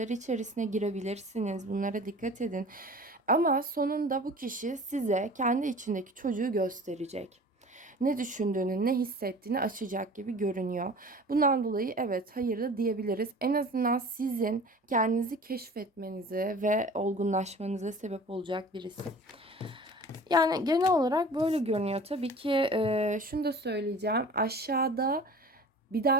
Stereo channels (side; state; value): both; normal; correlation 0.42